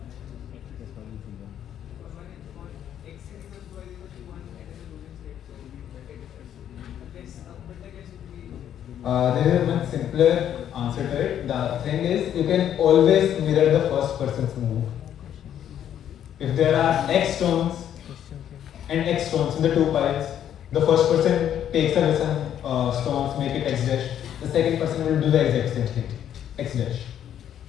There is a much simpler answer to it. The thing is, you can always mirror the first person's move. If there are x stones and x stones in the two piles, the first person takes away some stones, make it x dash. The second person will do the exact same thing, x dash.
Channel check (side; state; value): right; quieter; 10.1 dB